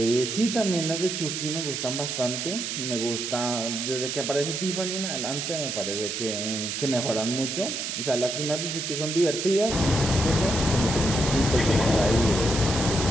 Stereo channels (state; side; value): noise; right; hiss, 3 dB below the sound